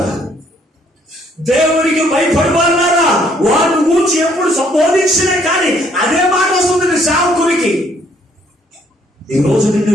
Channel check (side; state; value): both; normal; correlation 0.66